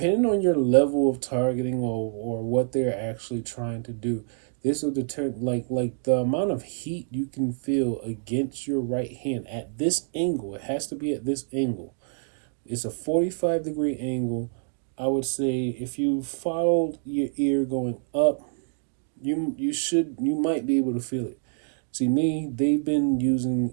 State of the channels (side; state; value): left; silent; digital silence